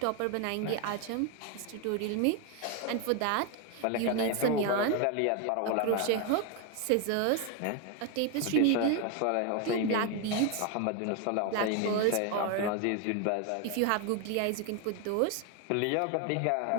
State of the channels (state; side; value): different; both; correlation 0.01